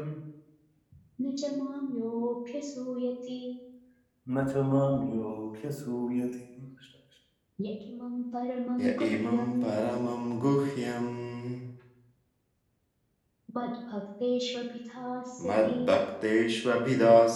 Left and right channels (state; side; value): identical; both; correlation 1.00